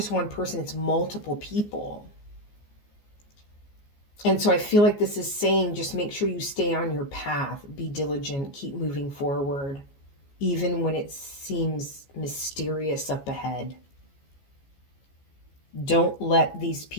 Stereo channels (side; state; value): right; late; 14 ms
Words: one person, it's multiple people. And so I feel like this is saying, just make sure you stay on your path, be diligent, keep moving forward, even when it seems mysterious up ahead. Don't let these